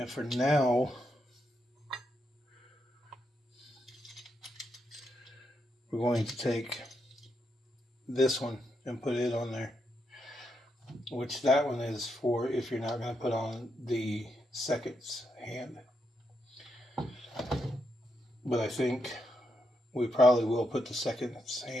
for now, we're going to take this one and put it on there. Which that one is for if you're not going to put on the seconds hand. But I think we probably will put the seconds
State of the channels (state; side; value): normal; both; correlation 0.81